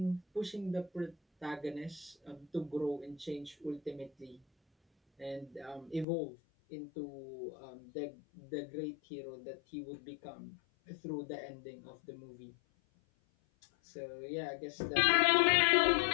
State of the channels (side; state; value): right; drops out; at 6.1 s